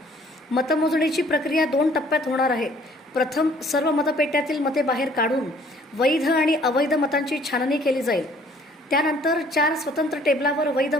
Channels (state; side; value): normal; both; correlation 0.57